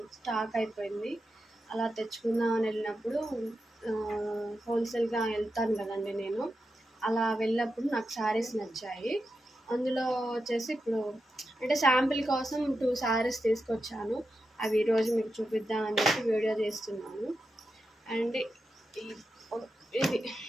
స్టాక్ అయిపోయింది. అలా తెచ్చుకుందామని వెళ్ళినప్పుడు హోల్సేల్గా వెళ్తాను కదండి నేను. అలా వెళ్ళినప్పుడు నాకు శారీస్ నచ్చాయి. అందులో వచ్చేసి ఇప్పుడు అంటే శాంపిల్ కోసం 2 శారీస్ తీసుకొచ్చాను. అవి ఈరోజు మీకు చూపిద్దామని చెప్పి వీడియో చేస్తున్నాను. అండ్ ఇది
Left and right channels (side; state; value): both; normal; correlation 0.89